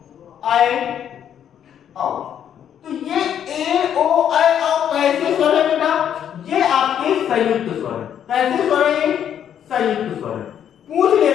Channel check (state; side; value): quieter; right; 9.4 dB